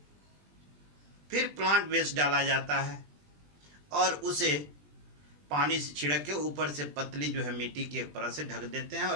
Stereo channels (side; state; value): left; late; 20 ms